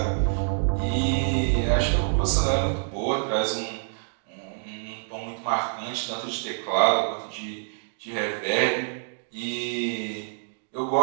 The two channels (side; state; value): left; silent; digital silence